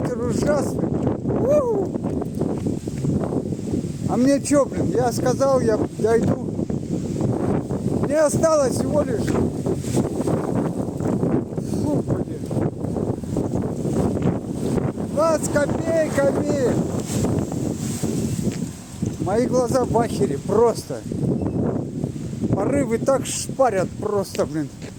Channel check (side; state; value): right; noise; hum, 28 dB below the sound